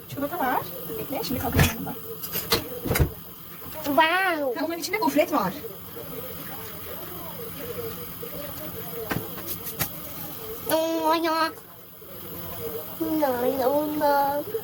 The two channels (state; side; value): identical; both; correlation 1.00